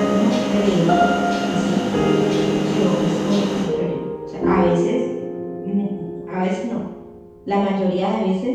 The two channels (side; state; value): both; identical; correlation 1.00